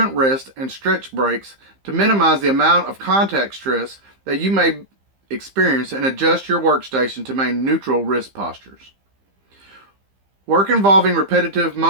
rest and stretch breaks to minimize the amount of contact stress that you may experience, and adjust your workstation to maintain neutral wrist postures. Work involving repetitive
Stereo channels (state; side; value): late; left; 15 ms